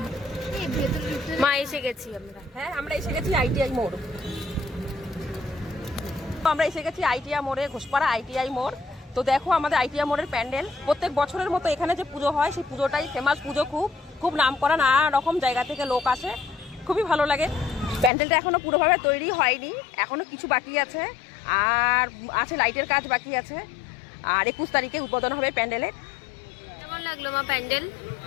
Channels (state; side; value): drops out; right; at 18.1 s